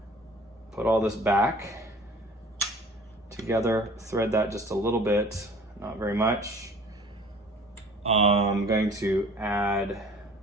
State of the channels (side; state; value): both; normal; correlation 0.48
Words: put all this back together, thread that just a little bit, not very much. I'm going to add